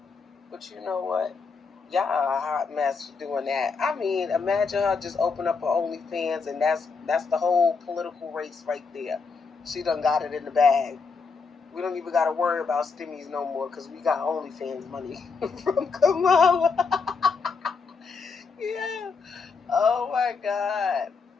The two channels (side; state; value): right; quieter; 4.9 dB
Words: But you know what? Y'all are a hot mess for doing that. I mean, imagine her just open up her OnlyFans and that's the whole political race right there. She done got it in the bag. We don't even got to worry about stimmies no more because we got OnlyFans money from Kamala. Yeah. Oh, my God.